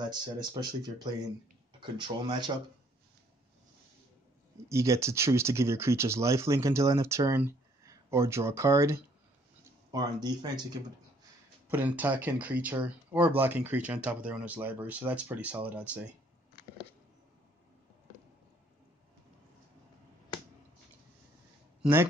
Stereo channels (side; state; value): both; normal; correlation 0.63